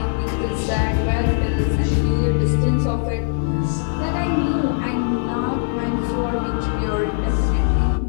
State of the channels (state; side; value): silent; right; digital silence